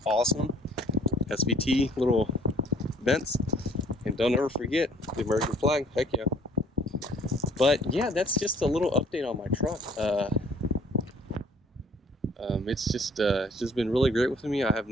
awesome. SVT little vents, and don't ever forget the American flag. Heck yeah. But yeah, that's just a little update on my truck. It's just been really great with me. I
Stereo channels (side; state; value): both; normal; correlation 0.57